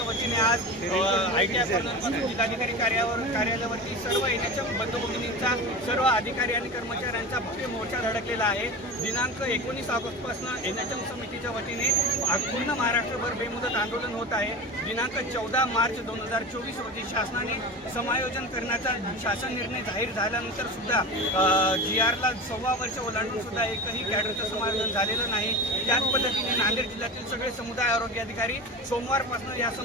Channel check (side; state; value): both; normal; correlation 0.29